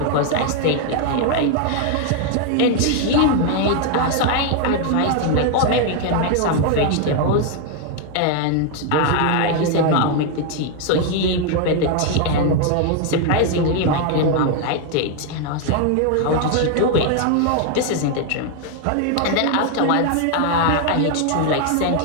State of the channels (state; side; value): different; both; correlation 0.01